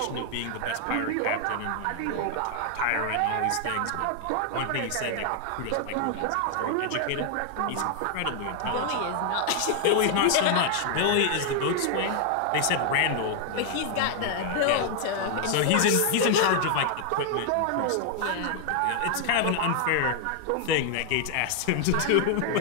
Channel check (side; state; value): both; different; correlation 0.00